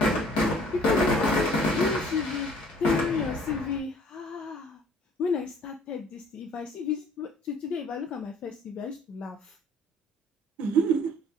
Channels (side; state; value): both; normal; correlation 0.55